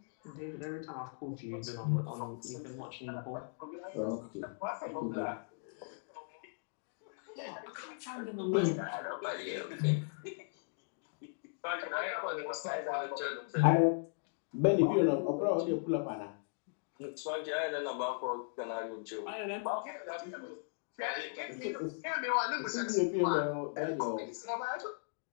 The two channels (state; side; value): silent; right; digital silence